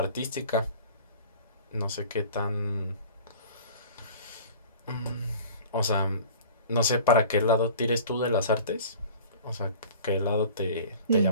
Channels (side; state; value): both; inverted; correlation -0.43